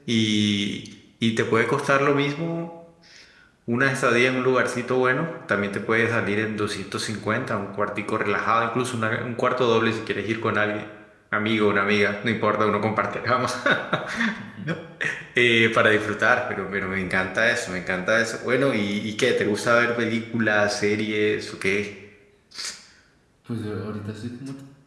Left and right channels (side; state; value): both; identical; correlation 1.00